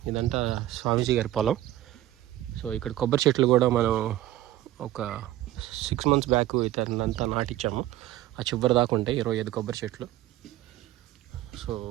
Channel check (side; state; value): left; quieter; 14.5 dB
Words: ఇదంతా స్వామీజీ గారి పొలం. సో ఇక్కడ కొబ్బరి చెట్లు కూడా మనం ఒక 6 months బ్యాక్ ఇతనంతా నాటించాము. ఆ చివరి దాకా ఉంటాయి 25 కొబ్బరి చెట్లు. సో